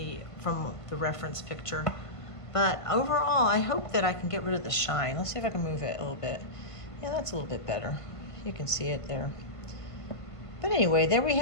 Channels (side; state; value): right; late; 1.5 ms